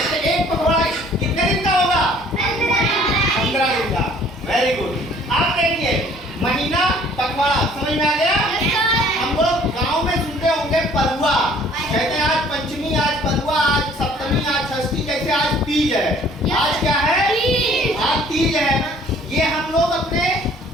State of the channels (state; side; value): normal; both; correlation 0.56